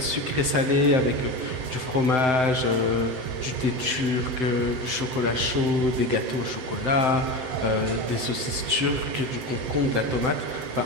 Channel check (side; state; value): left; late; 7.8 ms